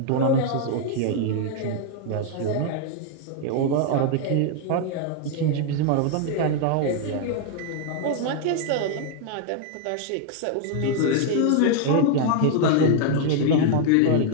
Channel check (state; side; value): different; both; correlation 0.00